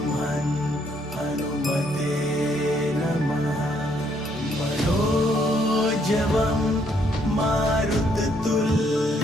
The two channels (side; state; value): both; normal; correlation 0.70